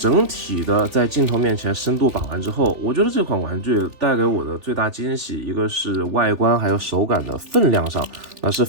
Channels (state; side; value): late; left; 3.4 ms